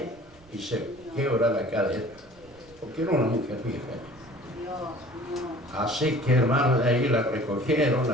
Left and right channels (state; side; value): noise; right; rumble, 26 dB below the sound